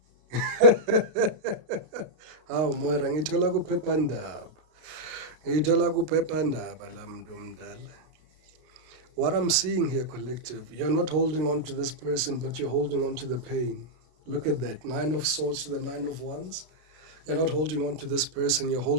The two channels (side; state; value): left; late; 33 ms